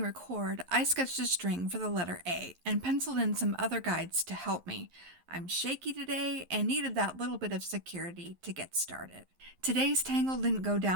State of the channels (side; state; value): left; late; 11 ms